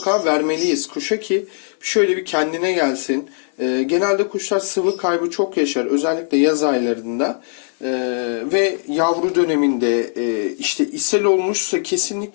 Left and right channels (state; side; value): silent; right; 66 dB below the other